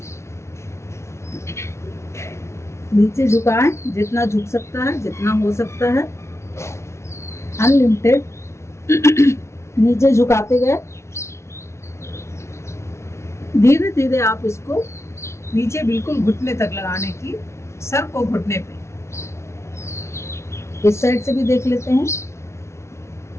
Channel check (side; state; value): right; late; 0.13 ms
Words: नीचे झुकाएं, जितना झुक सकता है, जितना हो सकता है, अनलिमिटेड नीचे झुकाते गए। धीरे धीरे आप इसको नीचे बिल्कुल घुटने तक लगाने की, सर को घुटने पे। इस साइड से भी देख लेते हैं।